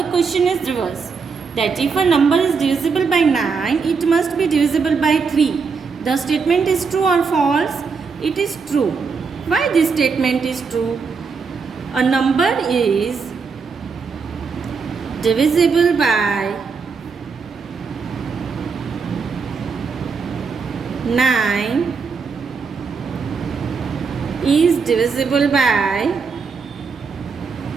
question is reverse. That if a number is divisible by 9, it must be divisible by 3. The statement is true or false? It is true. Why this statement is true? A number is divisible by 9 is divisible by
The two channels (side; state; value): left; quieter; 5.2 dB